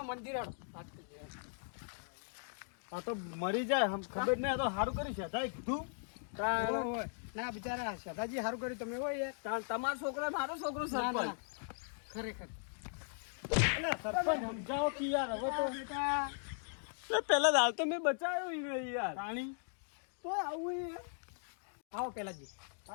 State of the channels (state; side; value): silent; right; digital silence